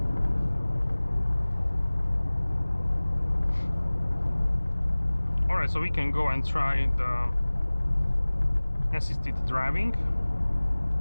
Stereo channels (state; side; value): inverted; both; correlation -1.00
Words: Alright, so we can go and try the assisted driving.